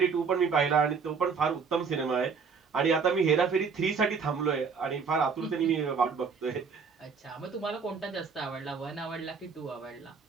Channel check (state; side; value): quieter; left; 5.5 dB